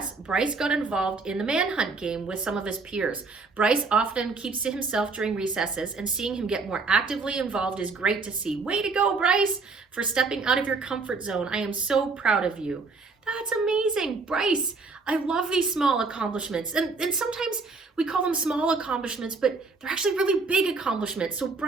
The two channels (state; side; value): quieter; left; 4.1 dB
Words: Bryce got involved in the manhunt game with some of his peers. Bryce often keeps to himself during recesses, and seeing him get more actively involved is great to see. Way to go, Bryce, for stepping out of your comfort zone. I am so proud of you. That's amazing. Bryce, I love these small accomplishments. And sometimes we call them small accomplishments, but they're actually really big accomplishments. So